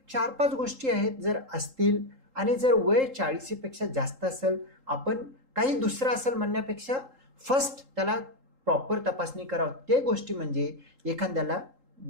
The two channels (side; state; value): left; late; 3.8 ms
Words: 4-5 गोष्टी आहेत, जर असतील आणि जर वय 40पेक्षा जास्त असेल, आपण काही दुसरं असेल म्हणण्यापेक्षा फर्स्ट त्याला प्रॉपर तपासणी करावं. ते गोष्टी म्हणजे एखाद्याला